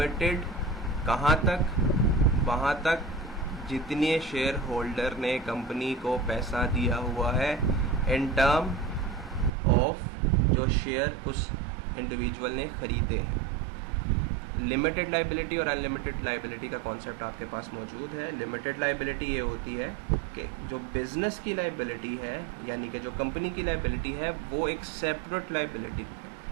कहाँ तक? वहाँ तक जितने शेयर होल्डर ने कंपनी को पैसा दिया हुआ है in term of जो शेयर उस इंडिविजुअल ने खरीदे हैं। लिमिटेड लाइबिलिटी और अनलिमिटेड लाइबिलिटी का कॉन्सेप्ट आपके पास मौजूद है। लिमिटेड लाइबिलिटी ये होती है कि जो बिजनेस की लाइबिलिटी है, यानी कि जो कंपनी की लाइबिलिटी है, वो एक सेपरेट लाइबिलिटी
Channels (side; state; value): left; drops out; at 9.5 s